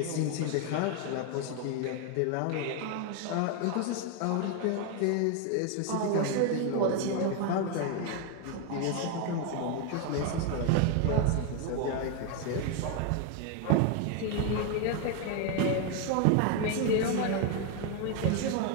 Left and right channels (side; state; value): both; different; correlation 0.01